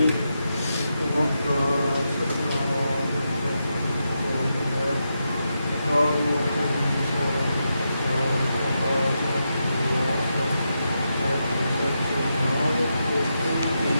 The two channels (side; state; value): both; inverted; correlation -0.86